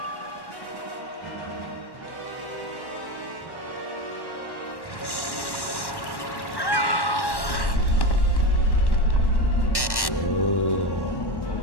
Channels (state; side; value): late; right; 1.1 ms